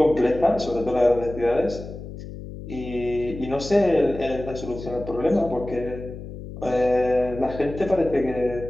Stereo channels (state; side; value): noise; left; hum, 11 dB below the sound